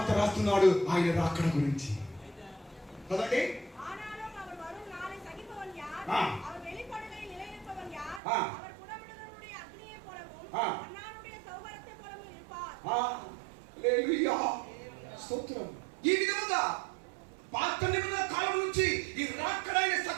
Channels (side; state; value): left; drops out; at 8.2 s